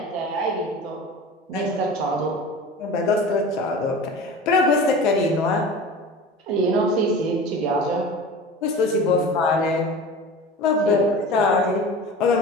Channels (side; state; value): both; normal; correlation 0.35